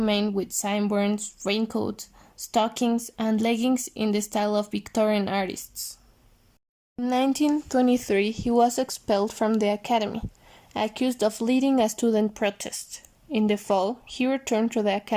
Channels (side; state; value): both; identical; correlation 1.00